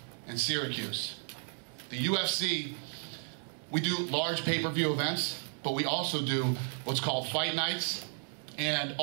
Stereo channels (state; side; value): silent; left; 55 dB below the other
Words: and Syracuse. The UFC, we do large pay-per-view events, but we also do what's called fight nights and